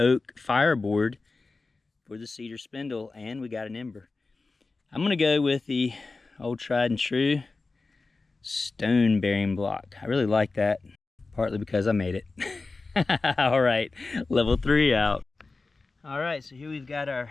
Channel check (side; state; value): right; quieter; 3.7 dB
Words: fireboard for the cedar spindle, and we got an ember. I'm gonna go with the old tried and true stone bearing block. I really like that, partly because I made it. All right, level 3 out. All right, so here we've got our